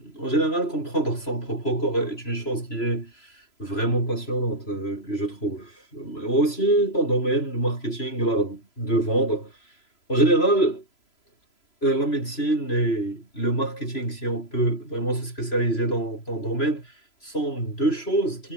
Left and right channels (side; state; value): right; late; 3.0 ms